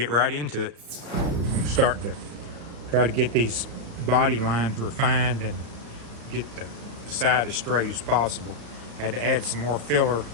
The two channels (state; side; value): late; left; 34 ms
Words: right into it. I'm starting to try to get these body lines refined and get the side as straight as possible. Had to add some more filler